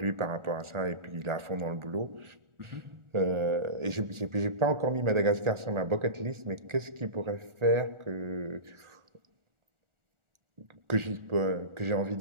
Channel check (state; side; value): late; left; 1.4 ms